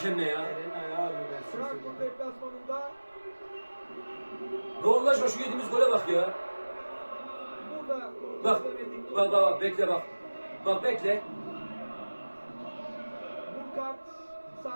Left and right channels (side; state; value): both; inverted; correlation -1.00